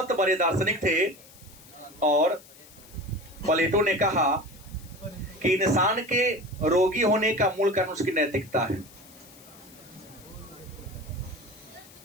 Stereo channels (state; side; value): noise; left; hiss, 22 dB below the sound